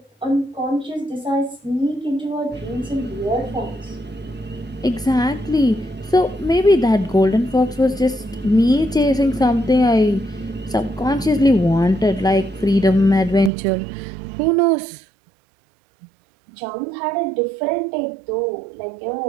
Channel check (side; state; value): left; drops out; at 13.5 s